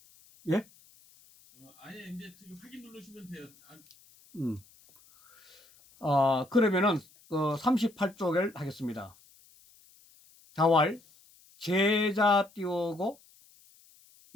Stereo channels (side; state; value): left; noise; hiss, 28 dB below the sound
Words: 예? 아예 이제 지금 확인 누르시면 돼요. 아, 음. 그러면은, 38쪽을 하겠습니다. 자활, 제자 띄우고,